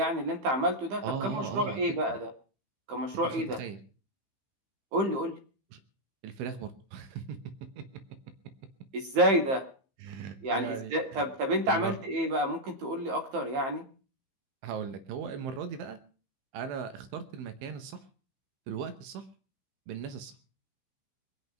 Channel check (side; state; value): left; late; 15 ms